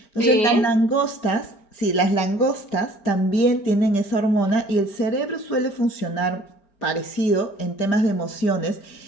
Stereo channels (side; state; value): right; late; 5.0 ms